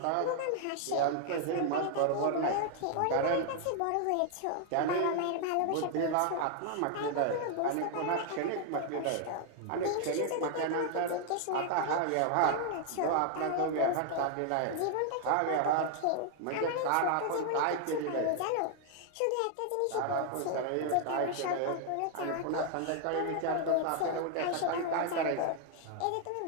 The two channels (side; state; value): both; different; correlation 0.00